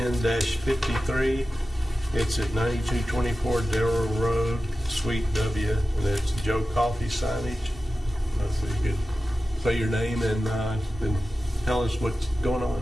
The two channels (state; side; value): normal; both; correlation 0.94